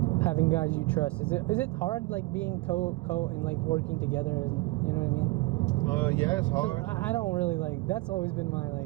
having guys you trust? Is it hard like being co and like working together? You know what I mean? Yeah, it's hard. I don't really like. That's always been my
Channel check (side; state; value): left; quieter; 22.2 dB